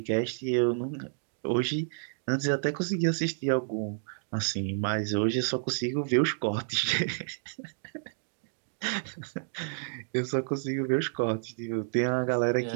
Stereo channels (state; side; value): silent; left; digital silence